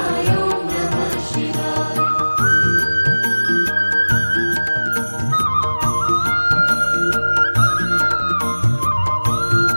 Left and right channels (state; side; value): inverted; both; correlation -1.00